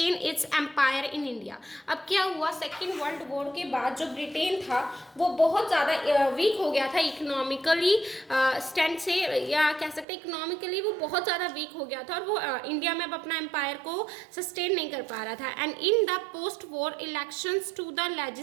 its empire in India. अब क्या हुआ, सेकेंड वर्ल्ड वॉर के बाद जो ब्रिटेन था वो बहुत ज़्यादा वीक हो गया था इकोनॉमिकली स्टैंड से, या कह सकते हैं इकोनॉमिकली वो बहुत ज़्यादा वीक हो गया था और वो इंडिया में अब अपना एम्पायर को सस्टेन नहीं कर पा रहा था. And in the post war elections to the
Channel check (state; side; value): drops out; left; at 10.1 s